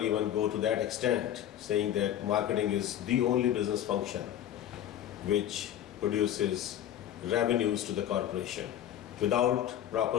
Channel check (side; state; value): right; quieter; 11.1 dB